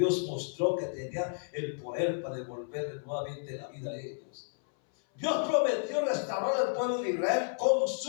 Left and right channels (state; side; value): silent; right; 57 dB below the other